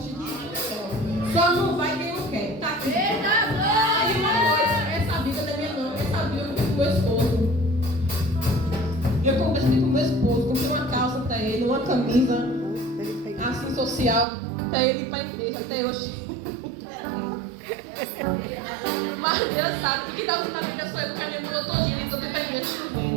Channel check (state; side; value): drops out; left; at 14.2 s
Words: Só não vai quem não quer. Tá aqui. Aí uma coisa, essa Bíblia não é minha não, essa Bíblia eu comprei com meu esposo. Eu comprei com meu esposo, comprei uma calça para ele, uma camisa assim social para ele ir para a igreja até hoje. Mas Deus sabe que está usando a Bíblia sou eu, porque a minha mudou todinha, então tem para a igreja